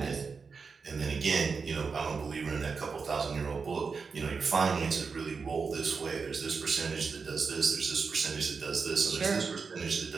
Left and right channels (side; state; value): left; quieter; 5.1 dB